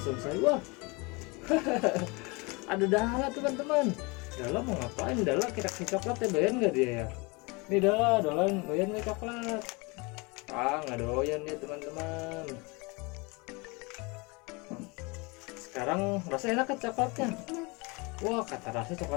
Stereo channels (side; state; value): right; quieter; 27.5 dB